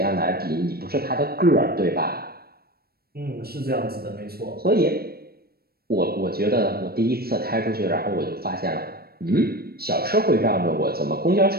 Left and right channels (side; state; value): left; late; 0.45 ms